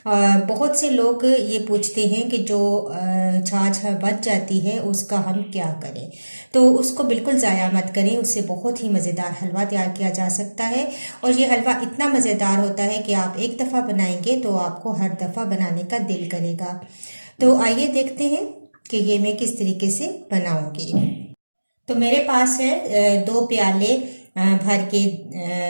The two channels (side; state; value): both; inverted; correlation -1.00